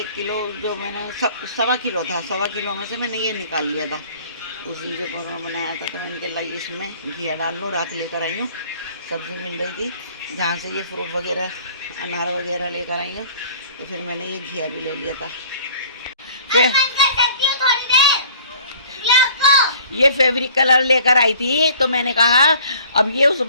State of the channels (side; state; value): both; inverted; correlation -0.52